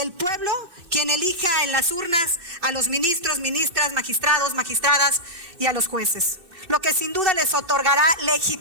pueblo quien elija en las urnas a los ministros, ministras, magistrados, magistradas y a los jueces, lo que sin duda les otorgará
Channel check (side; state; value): left; late; 2.6 ms